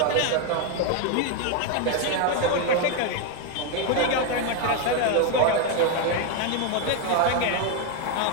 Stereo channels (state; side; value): different; both; correlation 0.01